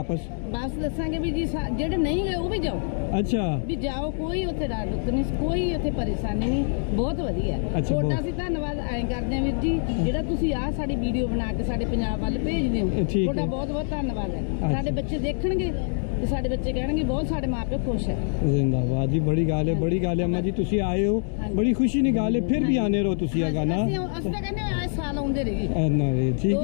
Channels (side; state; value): right; silent; 62 dB below the other